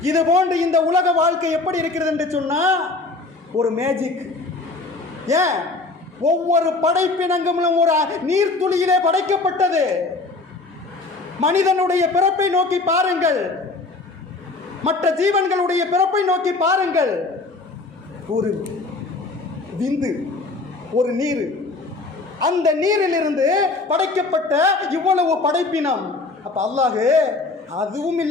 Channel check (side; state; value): right; quieter; 3.5 dB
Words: இது போன்று இந்த உலக வாழ்க்கை எப்படி இருக்கிறது என்று சொன்னால் ஒரு மேஜிக். ஏன்? ஒவ்வொரு படைப்பினங்களும் ஒரு நீர்த்துளியிலே படைக்கப்பட்டது. மனிதனுடைய பிறப்பை நோக்கி பாருங்கள், மற்ற ஜீவன்களுடைய பிறப்பை நோக்கி பாருங்கள். ஒரு விந்து, ஒரு நீர், அந்த நீரிலிருந்து படைக்கப்பட்ட இவ்வளவு படைப்பினம். அப்ப அல்லாஹ் அதுவும்